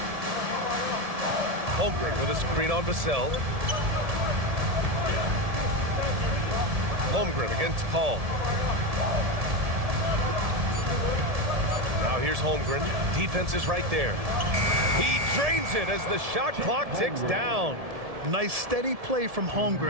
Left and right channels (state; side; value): late; left; 1.7 ms